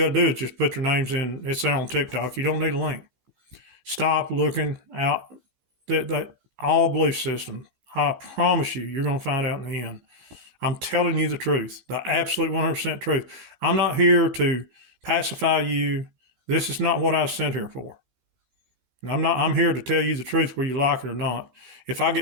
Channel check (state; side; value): late; left; 15 ms